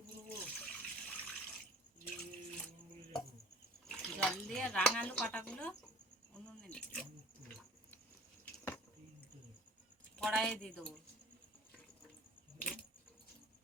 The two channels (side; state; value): both; normal; correlation 0.49